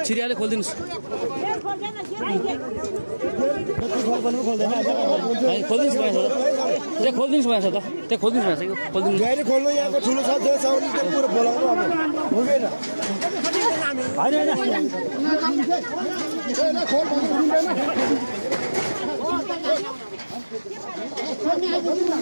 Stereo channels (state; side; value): inverted; both; correlation -1.00